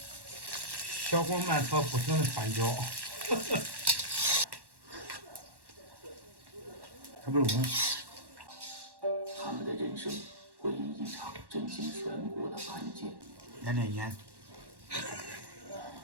小火慢炒，不停的翻搅。它不是他们的人生会因一场震惊全国的案件。来点盐。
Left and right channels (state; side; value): late; left; 1.1 ms